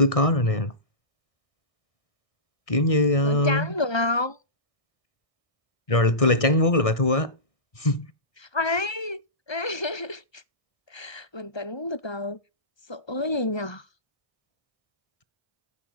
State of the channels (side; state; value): right; late; 1.6 ms